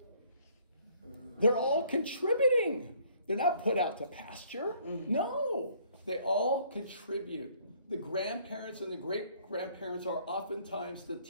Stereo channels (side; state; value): both; inverted; correlation -0.61